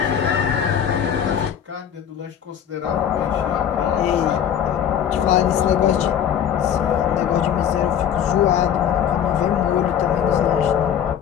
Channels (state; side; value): quieter; right; 9.1 dB